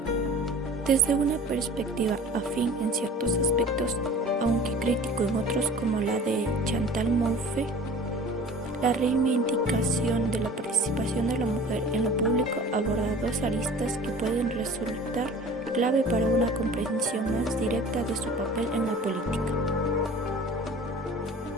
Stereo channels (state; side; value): normal; both; correlation 0.44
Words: Desde una perspectiva afín en ciertos aspectos, aunque crítico en otros como la de Chantal Mouffe, la reivindicación de la participación de la mujer en lo público aborda dos aristas que pueden resultar clave para una comprensión más directa de su papel en la política.